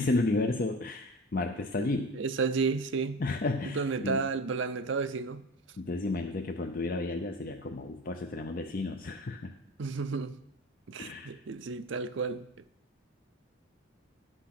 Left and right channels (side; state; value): both; normal; correlation 0.32